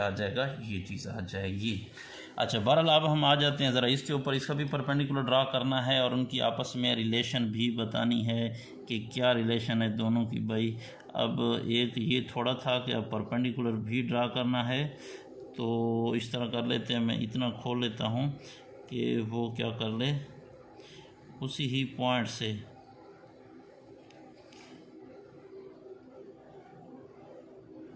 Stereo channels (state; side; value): identical; both; correlation 1.00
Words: आ जाएगा, ये चीज़ आ जाएगी। अच्छा, बहरहाल अब हम आ जाते हैं ज़रा इसके ऊपर, इसका भी परपेंडिकुलर ड्रा करना है और उनकी आपस में रिलेशन भी बतानी है कि क्या रिलेशन है दोनों की भाई। अब एक ये थोड़ा था कि अब परपेंडिकुलर भी ड्रा करना है, तो इस तरह कर लेते हैं, मैं इतना खोल लेता हूँ कि वो क्या कर ले, उसी ही पॉइंट से